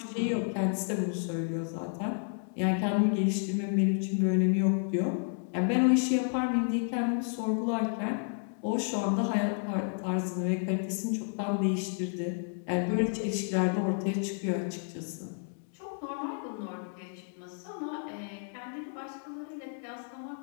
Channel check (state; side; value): silent; right; 57 dB below the other